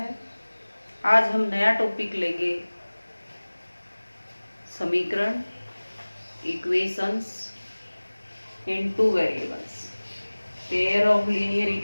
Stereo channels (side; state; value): both; inverted; correlation -1.00